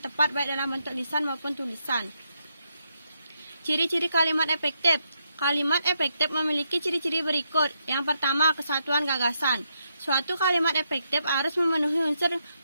baik dalam bentuk lisan maupun tulisan. Ciri-ciri kalimat efektif. Kalimat efektif memiliki ciri-ciri berikut. Yang pertama, kesatuan gagasan. Suatu kalimat efektif harus memenuhi unsur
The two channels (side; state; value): both; inverted; correlation -0.80